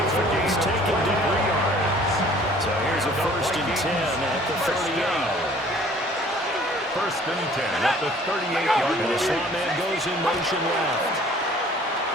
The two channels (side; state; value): both; normal; correlation 0.53